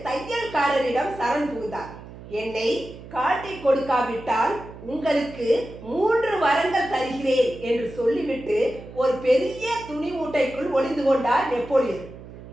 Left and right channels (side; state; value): right; noise; hum, 16 dB below the sound